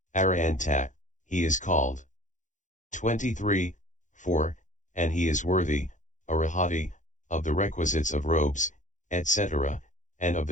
arahanta, he is called. 23, 4, and he is worthy, arahati, of the requisites of robes, etc., and of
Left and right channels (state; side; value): late; right; 0.36 ms